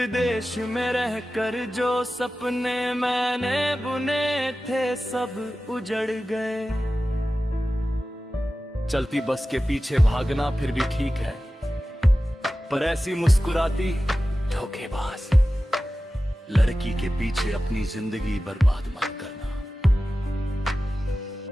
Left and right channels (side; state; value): both; normal; correlation 0.95